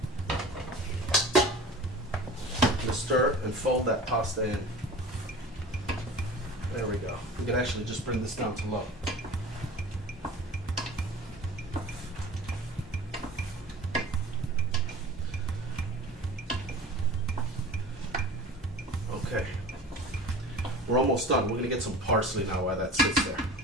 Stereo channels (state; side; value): normal; both; correlation 0.39